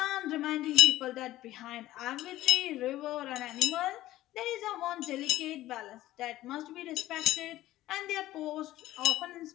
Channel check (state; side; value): quieter; right; 15.3 dB